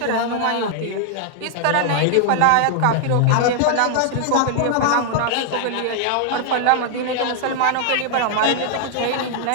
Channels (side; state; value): both; different; correlation 0.00